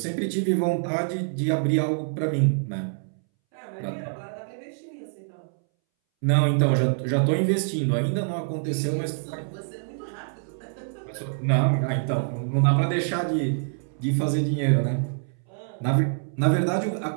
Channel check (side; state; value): left; silent; 61 dB below the other